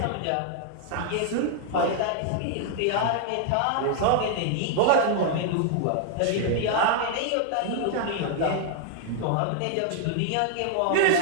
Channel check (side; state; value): both; different; correlation 0.00